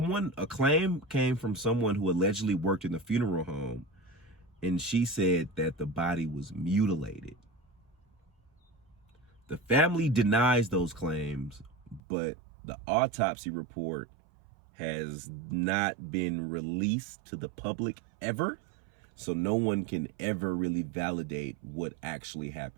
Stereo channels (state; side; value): drops out; left; at 12.0 s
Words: claim came from someone who allegedly worked in the funeral home, and she said that the body was mutilated. The family denies those claims, but the autopsy report has not been released to the public ever, so no one can ever really validate what actually